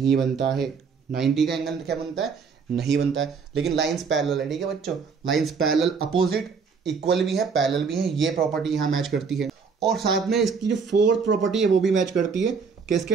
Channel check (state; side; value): quieter; left; 5.5 dB